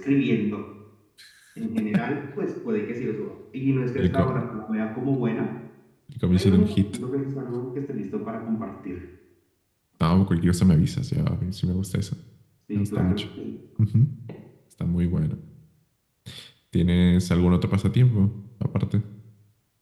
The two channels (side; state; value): both; identical; correlation 1.00